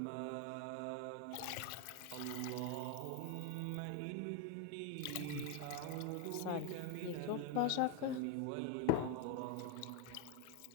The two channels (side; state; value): both; different; correlation 0.01